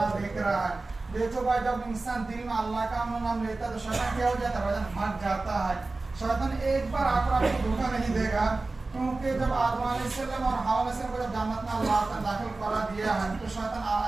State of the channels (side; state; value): left; quieter; 3.4 dB